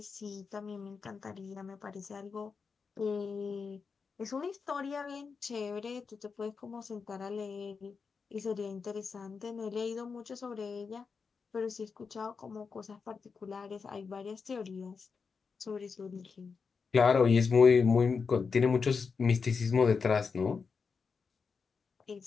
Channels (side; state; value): right; quieter; 5.3 dB